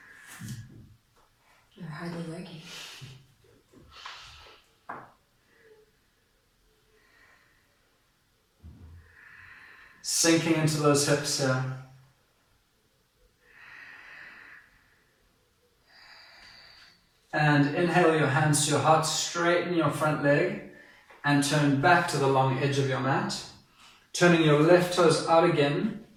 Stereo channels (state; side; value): identical; both; correlation 1.00